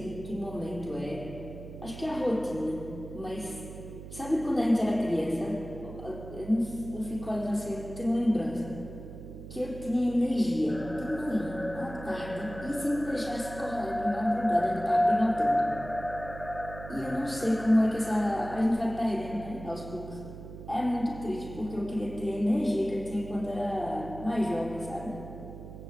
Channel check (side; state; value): right; noise; hum, 12 dB below the sound